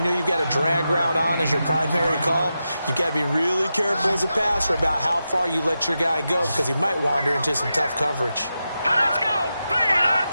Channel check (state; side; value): inverted; both; correlation -0.89